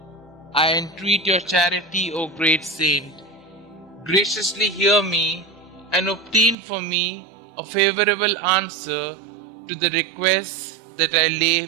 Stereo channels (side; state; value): left; drops out; at 6.6 s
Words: I entreat your charity, O great saint. Graciously hear me and obtain for me a favorable answer to the requests that I lay